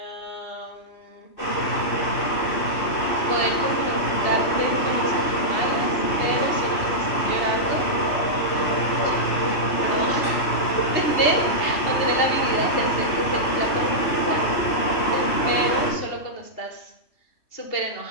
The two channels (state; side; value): late; right; 2.8 ms